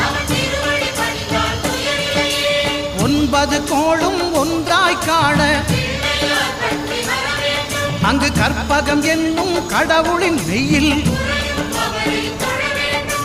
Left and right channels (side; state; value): both; identical; correlation 1.00